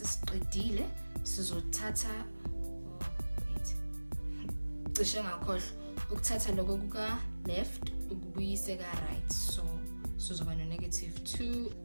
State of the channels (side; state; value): both; inverted; correlation -1.00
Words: sizothatha cishe ngakhohlwa ukuthatha lokho kuka left ukubuyise ka right. So sizoba no negative